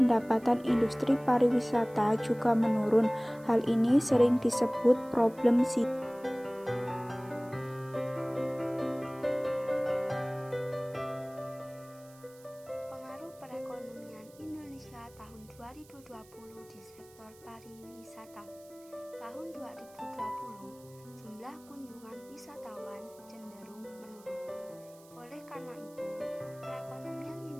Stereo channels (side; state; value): right; noise; hiss, 25 dB below the sound